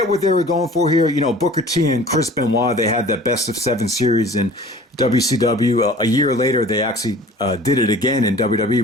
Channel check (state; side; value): normal; both; correlation 0.45